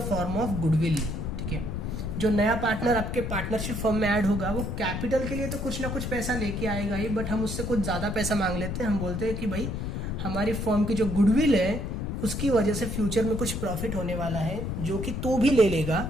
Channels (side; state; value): left; noise; rumble, 3 dB below the sound